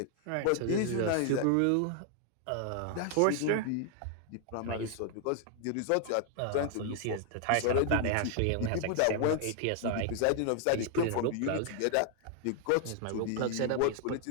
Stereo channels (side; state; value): both; different; correlation 0.00